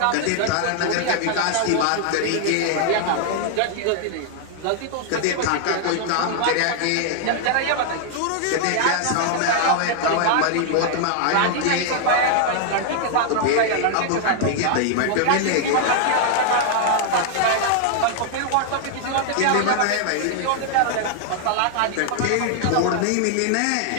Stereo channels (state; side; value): different; both; correlation 0.00